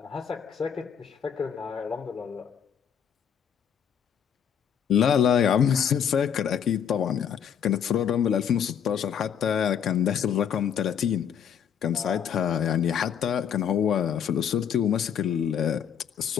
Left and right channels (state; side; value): quieter; right; 8.3 dB